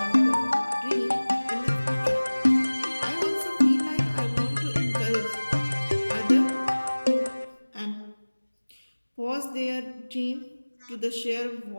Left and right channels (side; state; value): both; inverted; correlation -1.00